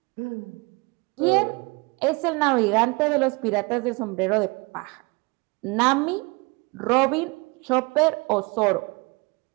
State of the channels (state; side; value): quieter; left; 27.5 dB